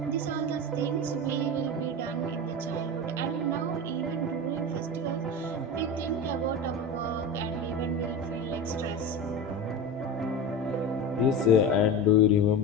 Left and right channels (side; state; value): both; normal; correlation 0.26